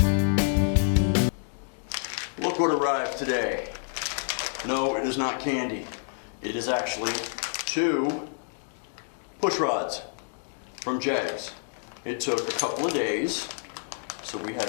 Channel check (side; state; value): right; silent; 59 dB below the other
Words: Look what arrived today. No, it is not candy. It is actually 2 push rods from Jags. It took a couple of days, so we had